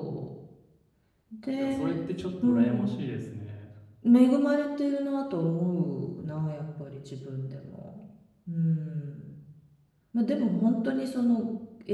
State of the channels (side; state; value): both; identical; correlation 1.00